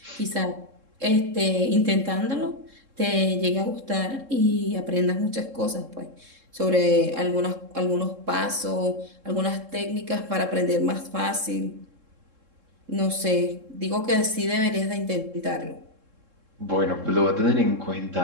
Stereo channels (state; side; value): late; left; 3.7 ms